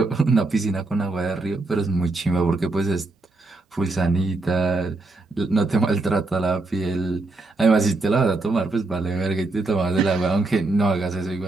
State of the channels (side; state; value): left; quieter; 3.2 dB